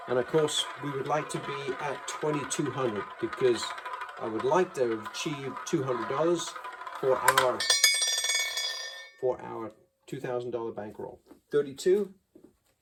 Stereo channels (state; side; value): identical; both; correlation 1.00